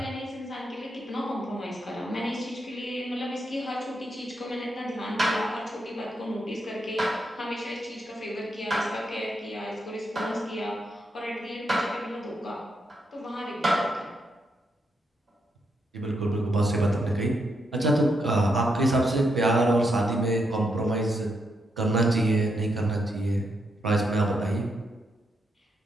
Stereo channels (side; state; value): both; normal; correlation 0.81